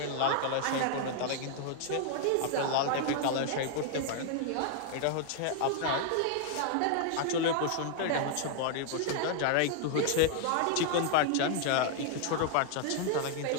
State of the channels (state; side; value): different; both; correlation 0.00